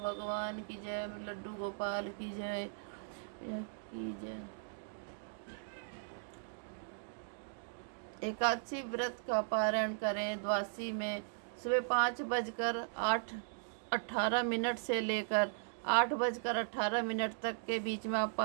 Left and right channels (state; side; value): silent; left; digital silence